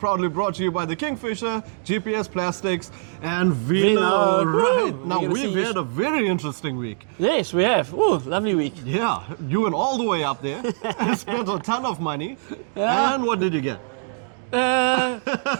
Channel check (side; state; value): left; silent; digital silence